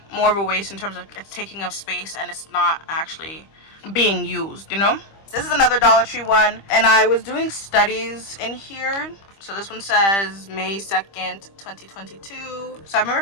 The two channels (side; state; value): right; late; 25 ms